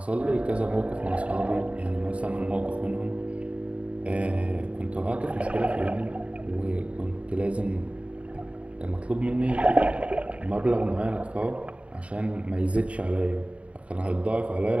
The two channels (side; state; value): left; late; 0.064 ms